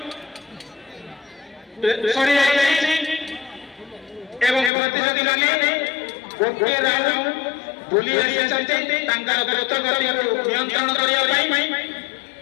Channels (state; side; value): drops out; right; at 4.7 s